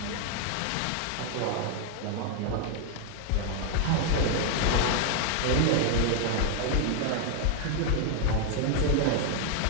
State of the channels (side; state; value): both; different; correlation 0.00